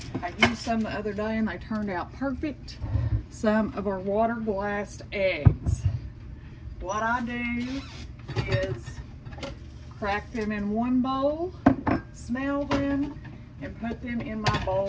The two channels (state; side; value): identical; both; correlation 1.00